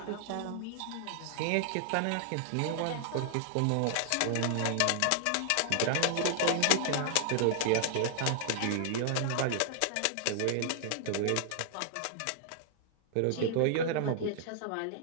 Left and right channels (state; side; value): different; both; correlation -0.01